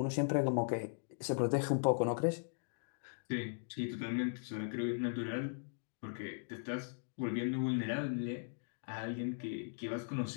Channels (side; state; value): right; silent; digital silence